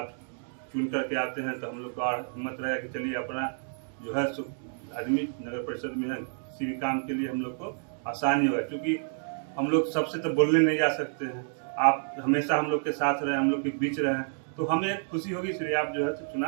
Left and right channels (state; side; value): silent; left; digital silence